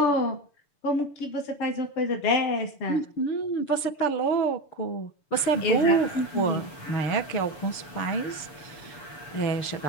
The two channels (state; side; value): late; right; 6.9 ms